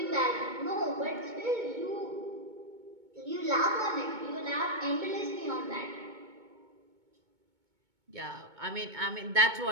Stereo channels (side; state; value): left; late; 2.2 ms